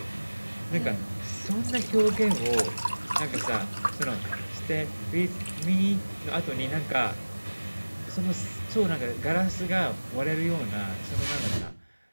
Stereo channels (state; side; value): inverted; both; correlation -1.00